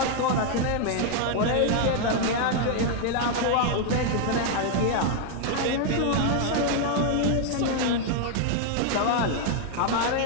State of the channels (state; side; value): different; both; correlation 0.00